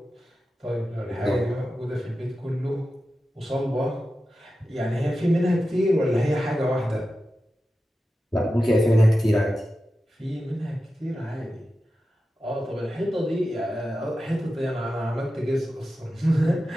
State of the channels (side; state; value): both; normal; correlation 0.92